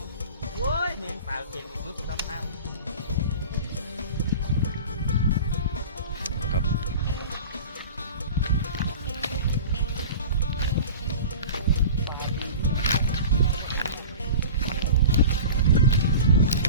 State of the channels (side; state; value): both; inverted; correlation -0.36